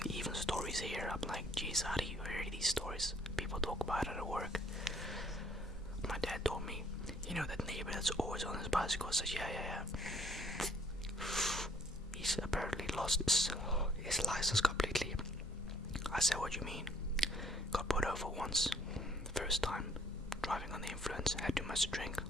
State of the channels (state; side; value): normal; both; correlation 0.62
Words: even stories here. I'm like, geez, how do you hear these stories? People talk about it at work. My dad told me, you know, that neighbor that's always on his bicycle. I said, yeah. He's apparently lost his license completely. I said, what do you mean? Got pulled over once. First time. Driving on the influence. Had too much to drink.